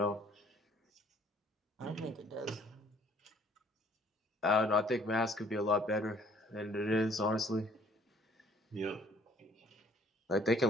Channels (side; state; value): both; normal; correlation 0.59